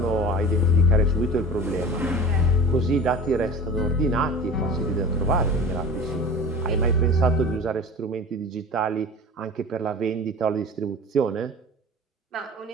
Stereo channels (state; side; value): normal; both; correlation 0.37